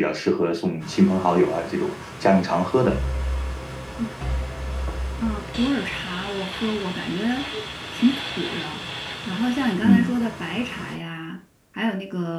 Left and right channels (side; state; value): both; identical; correlation 1.00